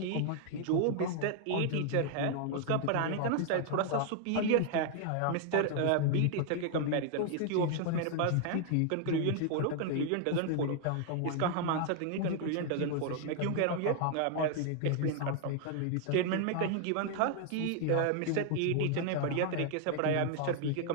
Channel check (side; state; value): both; different; correlation 0.00